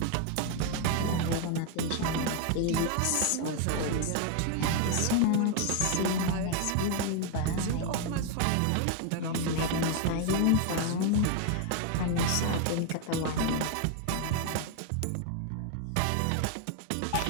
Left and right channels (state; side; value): different; both; correlation 0.01